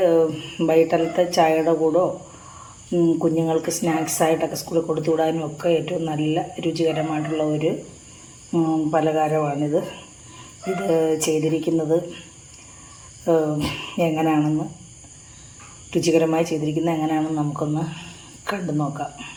വൈകിട്ടത്തെ ചായയുടെ കൂടോ കുഞ്ഞുങ്ങൾക്ക് സ്നാക്സായിട്ടൊക്കെ സ്കൂളിൽ കൊടുത്തു വിടാനും ഒക്കെ ഏറ്റവും നല്ല രുചികരമായിട്ടുള്ള ഒരു പലഹാരമാണിത്. ഇത് ചെയ്തിരിക്കുന്നത് എങ്ങനെയാണെന്ന്, രുചികരമായി ചെയ്തിരിക്കുന്നത് എങ്ങനെയാണെന്ന് നമുക്കൊന്ന് കണ്ടു നോക്കാം.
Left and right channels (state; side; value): identical; both; correlation 1.00